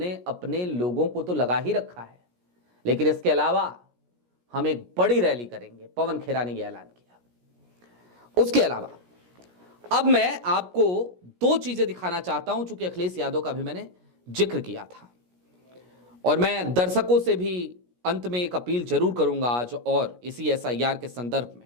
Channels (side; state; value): left; late; 17 ms